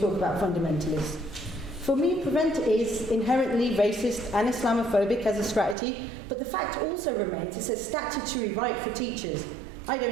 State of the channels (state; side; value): drops out; left; at 5.8 s